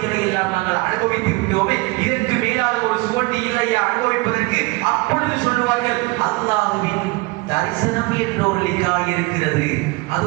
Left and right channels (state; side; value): quieter; left; 24.5 dB